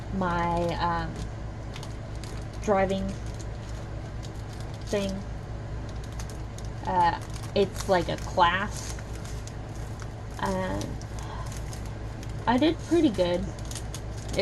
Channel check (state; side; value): identical; both; correlation 1.00